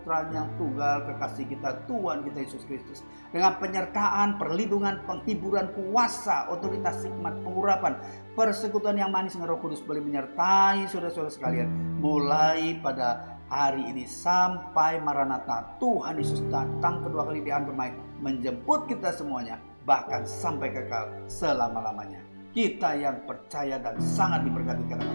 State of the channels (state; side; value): inverted; both; correlation -1.00